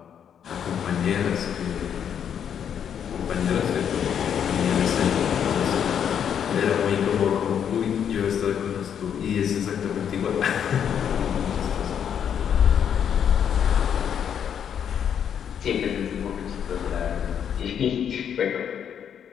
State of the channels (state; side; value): quieter; right; 8.5 dB